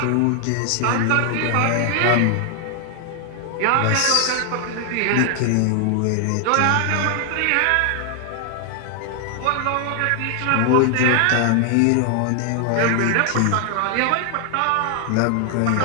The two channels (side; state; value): both; different; correlation 0.00